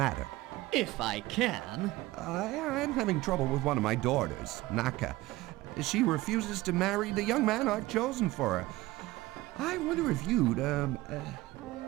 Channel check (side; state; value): left; quieter; 18.7 dB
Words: If I can. I'm having trouble with one of my daughters, Naka. She refuses to marry the young man I've chosen for her. I wonder if you'd,